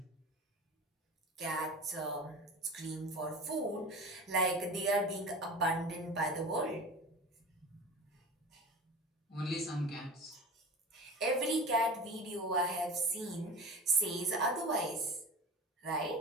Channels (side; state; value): both; normal; correlation 0.33